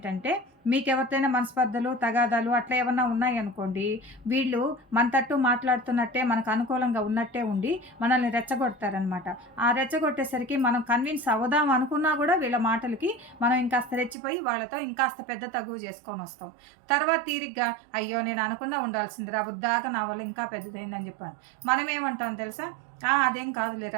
మీకెవరితోనైనా మనస్పర్ధలు, తగాదాలు అట్లా ఏమన్నా ఉన్నాయనుకోండి, వీళ్ళు మన తట్టు మాట్లాడుతున్నట్టే, మనకు అనుకూలంగా ఉన్నట్టే ఉండి మనల్ని రెచ్చగొడతారనమాట. ఆ రెచ్చగొట్టేసరికి మనం కన్విన్స్ అవుదాం అనుకున్నా గూడా వీళ్ళ మాటలకి మనం ఇంకాస్త రెచ్చిపోయి వాళ్ళతో ఇంకాస్త పెద్ద తగువు చేసుకొనొస్తాం. తర్వాత తీరిగ్గా అయ్యో! నేను అనకుండా ఉండాల్సిందిరా, బుద్దాక నా వల్ల ఇంకా పెద్దదయిందని చెప్పాను. మనమేమంటాం తెలుసా? అదేం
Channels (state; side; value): drops out; left; at 14.2 s